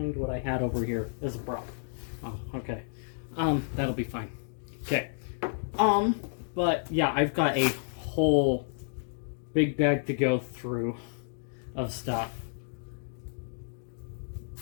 what I had over here as a prop. Oh, okay. That'll be fine. Okay. But yeah, I've got a whole big bag to go through of stuff.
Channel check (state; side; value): silent; right; digital silence